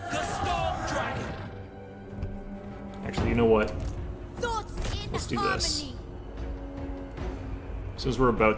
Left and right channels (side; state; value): both; identical; correlation 1.00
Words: The Storm Dragon! Actually, you know what? Thoughts in Let's do harmony. this. Since we're about